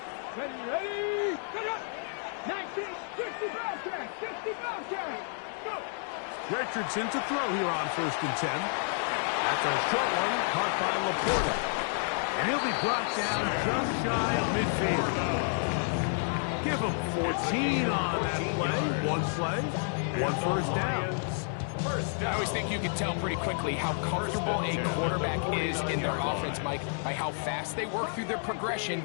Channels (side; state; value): right; silent; 58 dB below the other